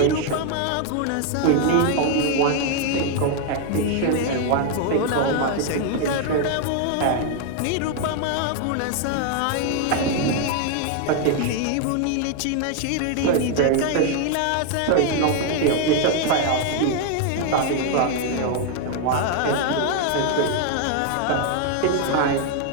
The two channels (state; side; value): different; both; correlation 0.00